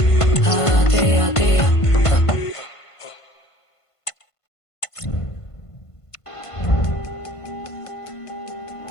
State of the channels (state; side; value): late; right; 1.5 ms